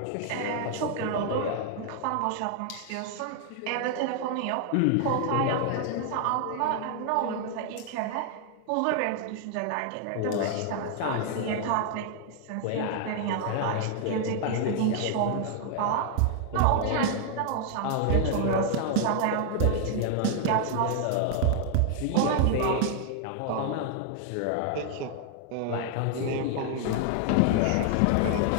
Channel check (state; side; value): different; both; correlation 0.00